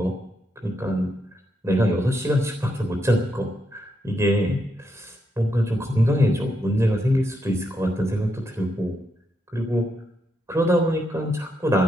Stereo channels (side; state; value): both; normal; correlation 0.81